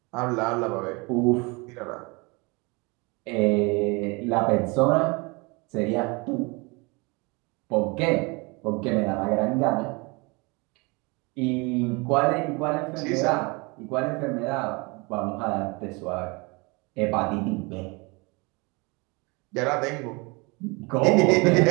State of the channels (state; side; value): quieter; left; 27.7 dB